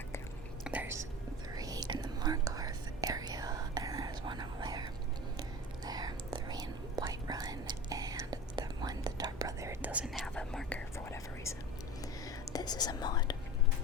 There's 3 in the Markarth area, and there's 1 over there. There, 3 in Whiterun, and the one, the Dark Brother, doesn't have a marker for whatever reason. This is a mod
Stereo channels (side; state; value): both; normal; correlation 0.34